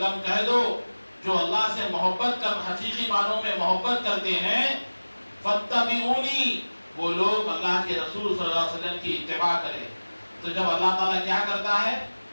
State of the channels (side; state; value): both; inverted; correlation -1.00